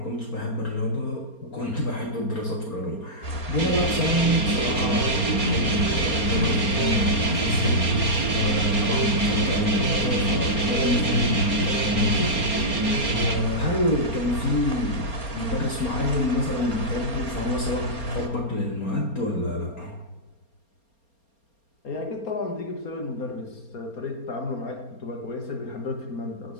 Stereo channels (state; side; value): late; right; 4.3 ms